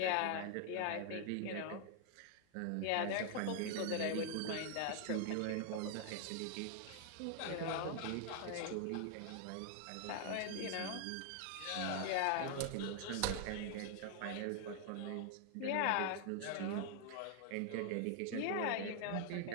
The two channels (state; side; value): different; both; correlation 0.00